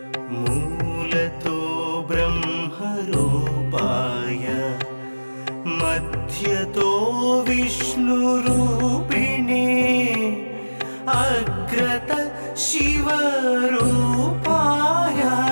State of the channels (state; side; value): inverted; both; correlation -1.00